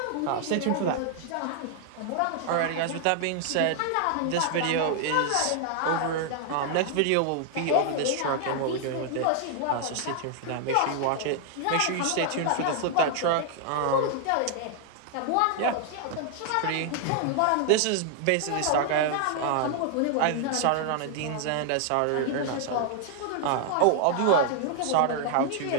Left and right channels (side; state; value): both; different; correlation 0.00